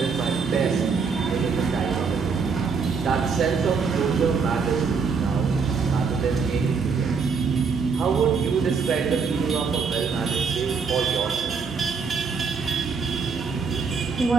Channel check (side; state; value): left; quieter; 5.4 dB